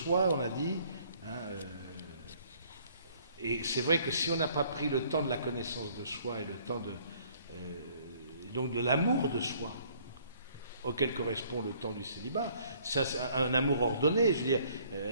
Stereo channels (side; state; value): both; inverted; correlation -0.60